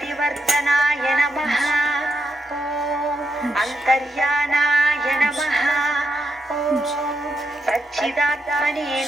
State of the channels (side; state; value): both; normal; correlation 0.83